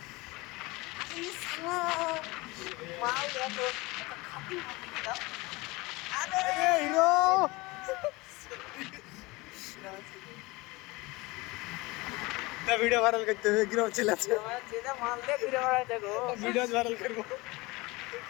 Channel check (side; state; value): right; quieter; 23.1 dB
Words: মাল এত খাতি মাটি দিলাম। আরে হিরো না ভিডিও ভাইরাল করতে হবে, গ্রাম ছেলে আছে যেটা মাল দিয়ে ঘুরে বেড়ায় দেখো, ভিডিও ভাইরাল করবো।